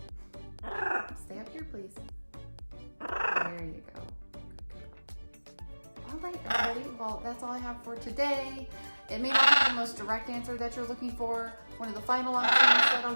Stay up here, please. There you go. All right, everybody. Well, that's all I have for today. It may not be the most direct answer that you're looking for. One of the final options that I'll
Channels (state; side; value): inverted; both; correlation -1.00